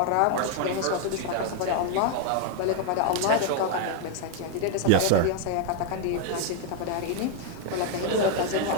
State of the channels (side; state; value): both; different; correlation 0.00